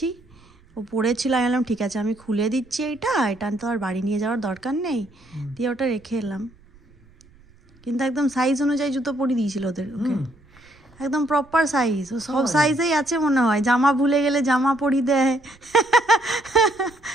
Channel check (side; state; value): right; noise; rumble, 28 dB below the sound